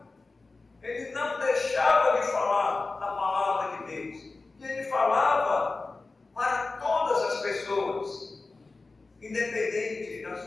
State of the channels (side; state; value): right; quieter; 3.6 dB